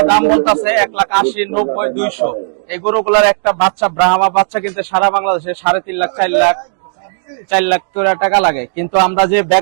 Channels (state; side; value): silent; left; digital silence